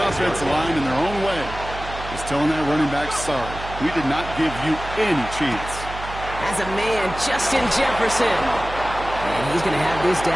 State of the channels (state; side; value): noise; right; hum, 11 dB below the sound